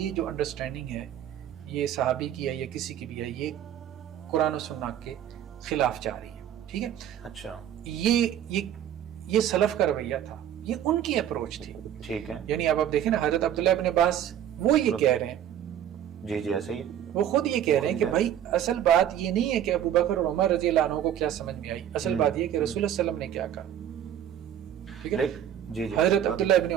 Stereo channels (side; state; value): left; quieter; 10.4 dB